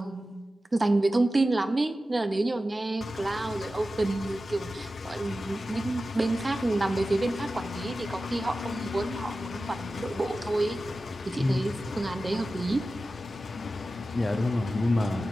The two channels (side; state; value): both; normal; correlation 0.94